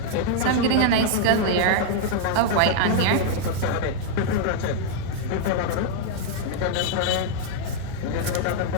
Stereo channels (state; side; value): different; both; correlation -0.01